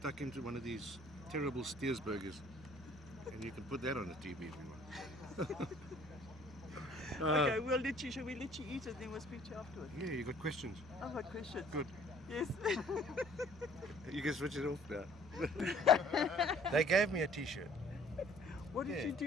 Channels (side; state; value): both; normal; correlation 0.55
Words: into one of these terrible Steers burgers. And you can put that on the TV if you want. Okay, shall we let you eat it, then we'll speak to you afterwards? Yeah, you got questions? I've got questions. Good. Yes. You can switch it off now. They gave me a t-shirt. What did Yeah. you